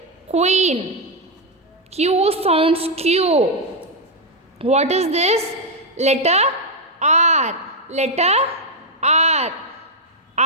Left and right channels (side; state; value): both; normal; correlation 0.00